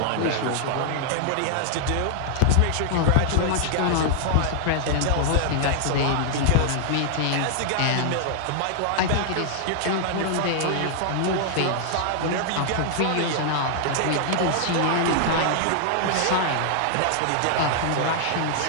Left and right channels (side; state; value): both; different; correlation -0.01